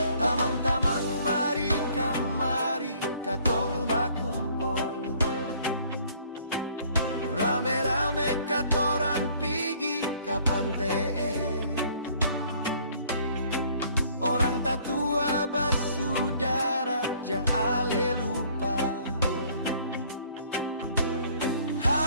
Tamang-tamang mari kamari katong bakumpul, rame-rame katoran pigi ka pantee. Orang tatua basudara jang ale lupa,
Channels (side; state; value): both; inverted; correlation -0.59